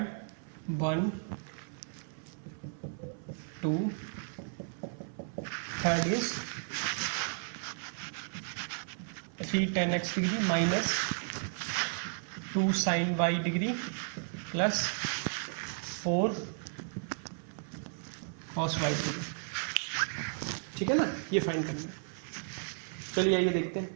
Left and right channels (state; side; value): silent; left; 55 dB below the other